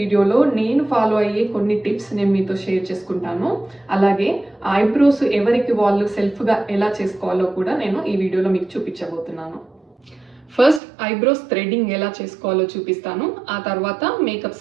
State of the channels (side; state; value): left; drops out; at 10.8 s